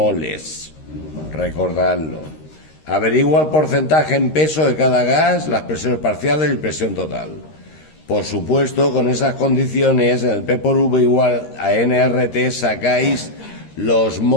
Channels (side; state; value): right; late; 13 ms